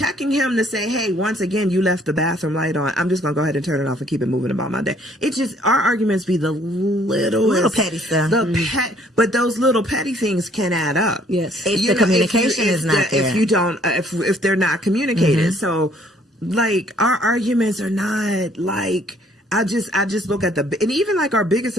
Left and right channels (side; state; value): both; normal; correlation 0.62